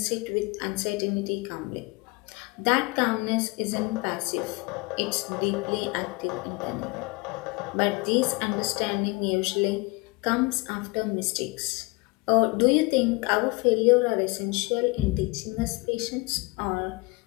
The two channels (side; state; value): right; quieter; 25.6 dB